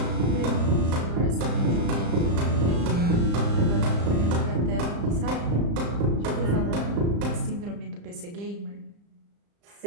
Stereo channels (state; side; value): late; left; 35 ms